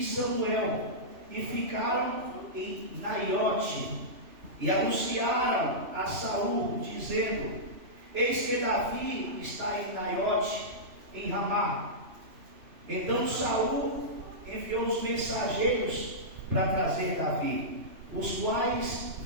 Samuel, e ficaram em Naiote, e anunciaram a Saul, dizendo: eis que Davi está em Naiote, em Ramá. Então Saul enviou os mensageiros para trazer Davi, os quais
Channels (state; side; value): late; left; 3.0 ms